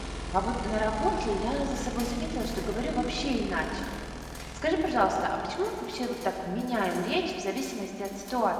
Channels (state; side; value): identical; both; correlation 1.00